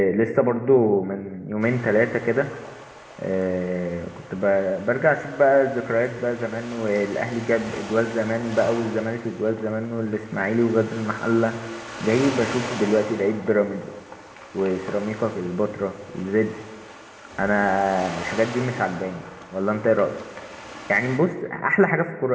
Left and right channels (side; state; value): both; identical; correlation 1.00